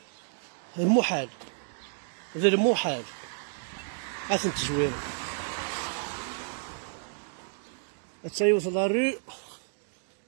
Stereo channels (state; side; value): silent; left; digital silence